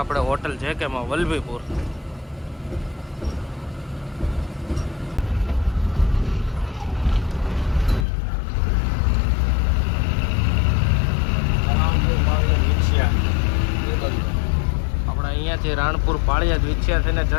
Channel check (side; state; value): right; drops out; at 8.1 s